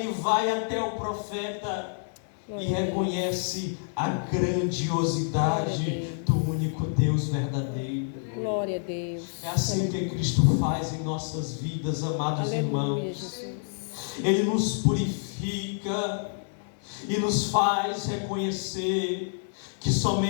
vai até o profeta e reconhece a grandiosidade do único Deus verdadeiro. Glória a Deus. É assim que Cristo faz em nossas vidas, amados Aleluia, irmãos. Jesus. Ele nos purifica e nos faz reconhecer que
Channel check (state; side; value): silent; right; digital silence